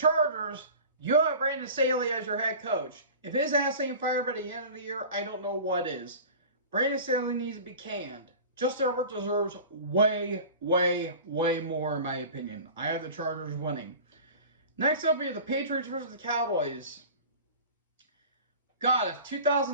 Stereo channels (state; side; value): inverted; both; correlation -0.38